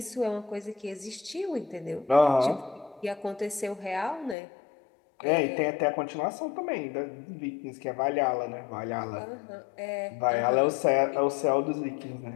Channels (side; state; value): right; drops out; at 4.4 s